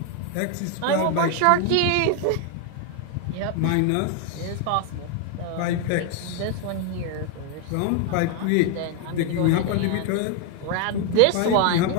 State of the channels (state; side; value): different; both; correlation 0.01